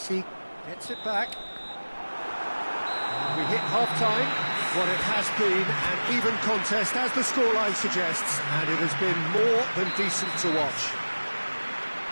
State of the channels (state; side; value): inverted; both; correlation -1.00